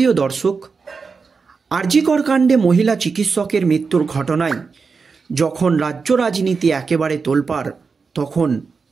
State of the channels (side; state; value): left; quieter; 5.0 dB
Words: দর্শক, আরজিকর কাণ্ডে মহিলা চিকিৎসকের মৃত্যুর ঘটনায় যখন রাজ্য রাজনীতি একেবারে তোলপাড়, তখন